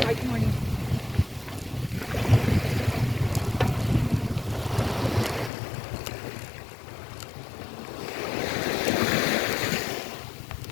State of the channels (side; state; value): right; drops out; at 5.5 s